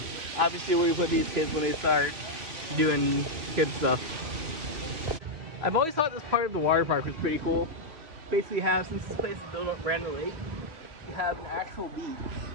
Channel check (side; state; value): left; late; 2.9 ms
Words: Obviously where we put these kids when they start doing kid stuff. I've always thought this part of the water park was pretty cool. Basically have, since this place is built up randomly, you have an actual beach